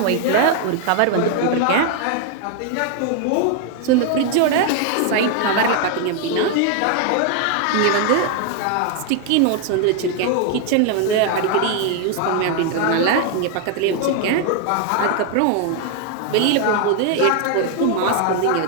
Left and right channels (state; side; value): different; both; correlation 0.00